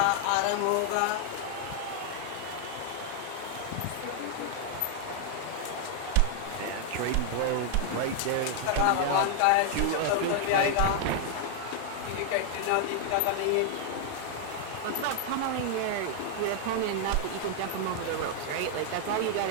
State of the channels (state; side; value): different; both; correlation 0.00